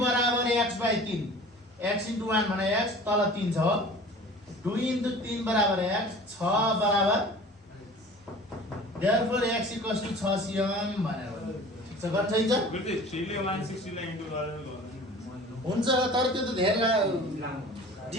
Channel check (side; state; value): both; normal; correlation 0.43